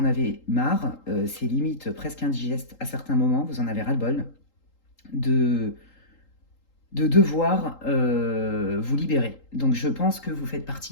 avez marre, c'est limite presque indigeste à certains moments, vous en avez ras-le-bol de devoir vous libérer. Donc je pense que vous faites partie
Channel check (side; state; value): right; late; 3.8 ms